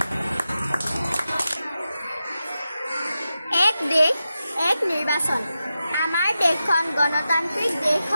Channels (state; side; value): inverted; both; correlation -0.91